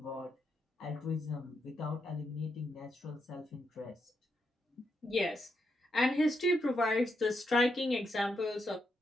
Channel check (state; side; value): normal; both; correlation 0.81